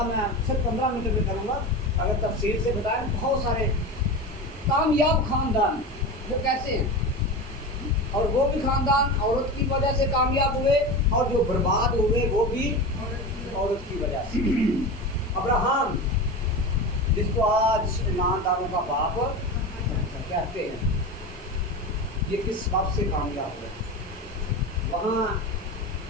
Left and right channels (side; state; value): both; normal; correlation 0.26